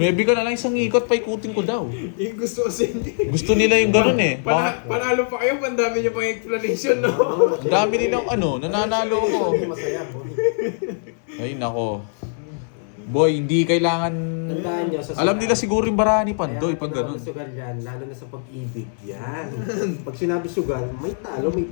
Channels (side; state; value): right; silent; 58 dB below the other